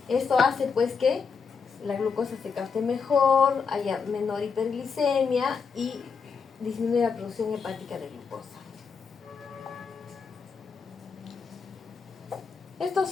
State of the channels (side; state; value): right; quieter; 5.6 dB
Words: Esto hace pues que la glucosa se capte mejor, haya menor hiperglicemia y disminuye la producción hepática de glucosa. Estos